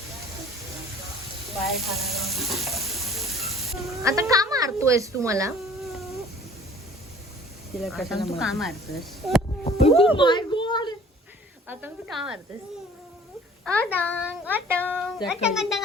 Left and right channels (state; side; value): normal; both; correlation 0.51